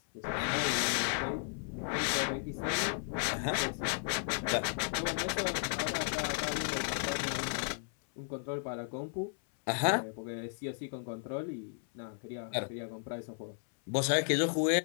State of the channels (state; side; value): silent; right; 55 dB below the other